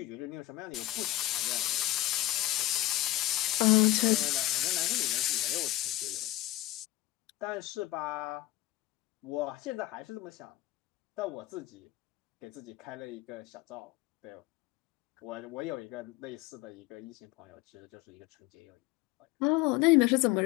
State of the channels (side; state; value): right; quieter; 16.5 dB